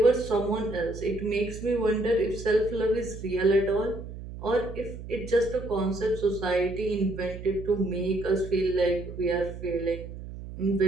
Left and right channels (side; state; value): right; noise; hum, 11 dB below the sound